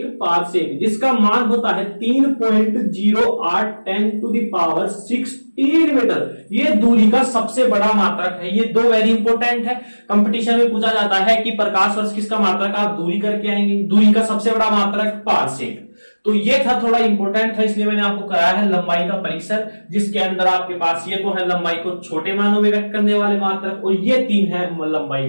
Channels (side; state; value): both; inverted; correlation -1.00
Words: जिसका मान होता है 3.0810⁻16 मीटर। ये दूरी का सबसे बड़ा मात्रक है। ये 2 वेरी इंपॉर्टेंट है। कंपटीशन में पूछा जाता है कि प्रकाश वर्ष किसका मात्रक, आप दूरी करके आएंगे। दूरी का सबसे बड़ा मात्रक पारसेक। तो ये था, थोड़ा इंपॉर्टेंट था, इसलिए मैंने आपको कराया है लंबाई का परिसर, जिसके अंदर आपके पास ये तो है लंबाई को छोटे मानों में व्यक्त करने वाले मात्रक, और ये 3 है लंबाई